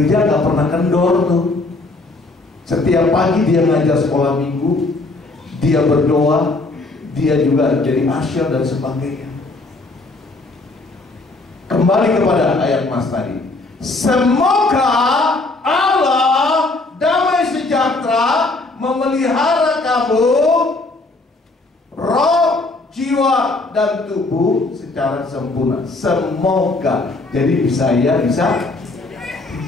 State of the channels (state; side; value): quieter; right; 3.2 dB